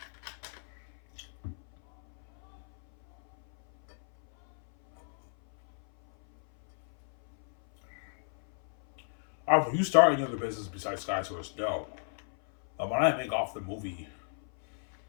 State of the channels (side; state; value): right; silent; 57 dB below the other